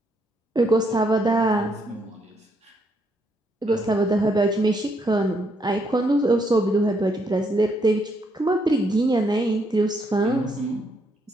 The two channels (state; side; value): normal; both; correlation 0.74